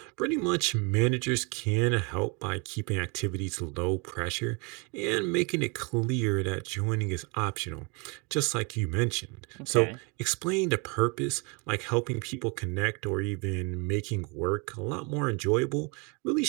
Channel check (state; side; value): quieter; left; 31.7 dB